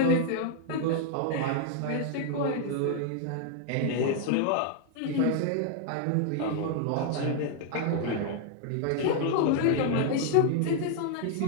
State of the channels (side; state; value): both; different; correlation 0.00